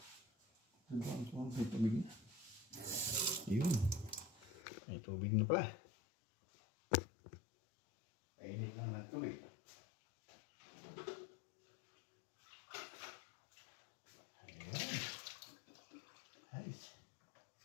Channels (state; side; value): drops out; right; at 4.6 s